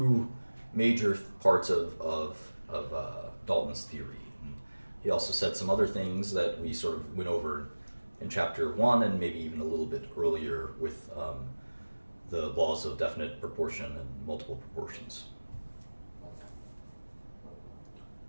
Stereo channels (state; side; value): inverted; both; correlation -1.00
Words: major parts of Dalton's theory. And he also said some other things that we sort of went over in chapter 1 and maybe even a little bit earlier with the laws of definite proportion and multiple proportions.